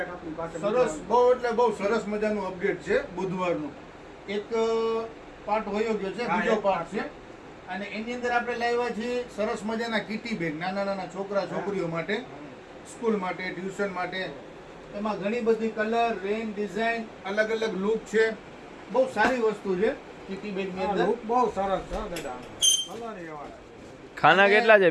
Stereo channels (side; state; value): both; identical; correlation 1.00